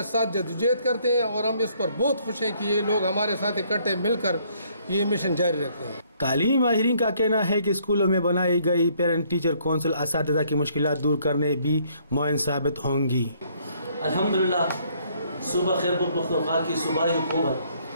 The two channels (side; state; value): both; inverted; correlation -0.65